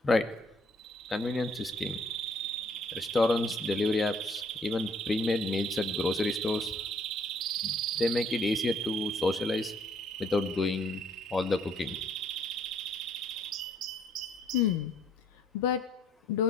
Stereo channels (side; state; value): both; normal; correlation 0.64